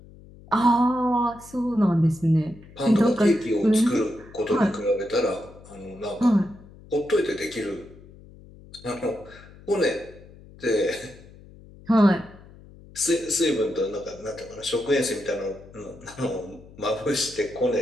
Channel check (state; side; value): noise; left; hum, 21 dB below the sound